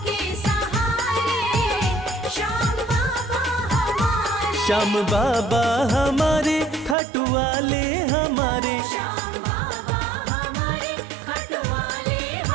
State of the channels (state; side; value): drops out; left; at 7.0 s